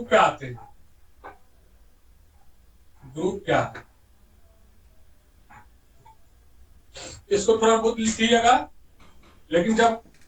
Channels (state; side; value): identical; both; correlation 1.00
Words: पे आते हैं। ग्रुप क्या है, इसको थोड़ा बहुत लिखिएगा, लेकिन जब